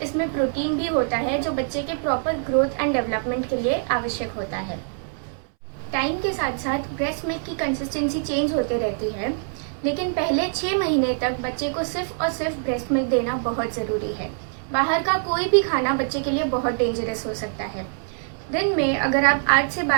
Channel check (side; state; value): left; silent; 62 dB below the other